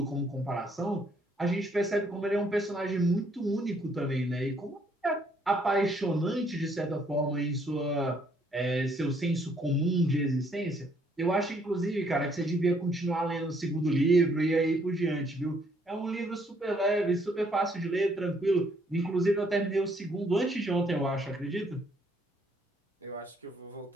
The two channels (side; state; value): both; normal; correlation 0.67